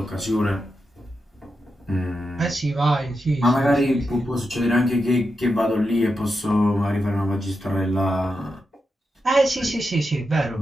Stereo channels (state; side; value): normal; both; correlation 0.87